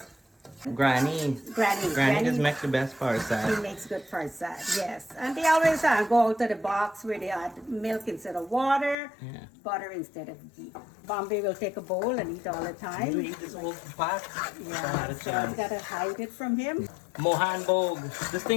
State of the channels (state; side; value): drops out; right; at 9.0 s